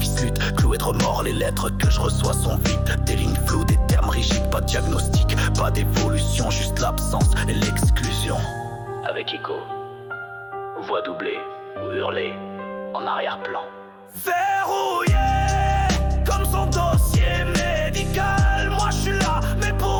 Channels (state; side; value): identical; both; correlation 1.00